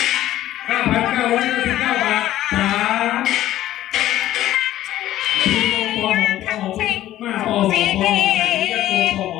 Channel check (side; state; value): right; quieter; 13.7 dB